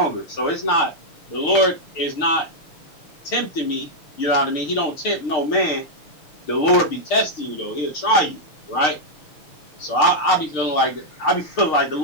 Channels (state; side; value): late; right; 6.6 ms